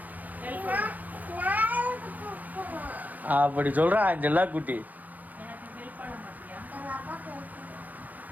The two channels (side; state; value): left; late; 0.081 ms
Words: அப்படி சொல்றா அஞ்செல்லா குட்டி. எனக்கு ஹெல்ப் பண்ண மாட்டியா?